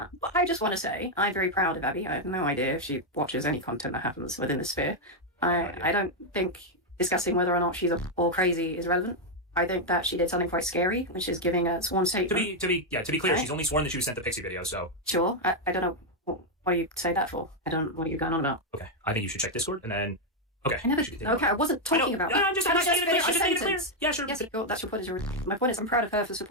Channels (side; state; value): both; normal; correlation 0.01